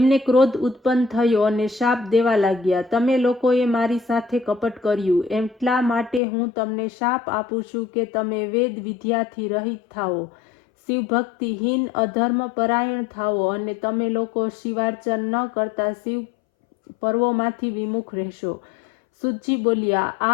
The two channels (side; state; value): right; drops out; at 6.2 s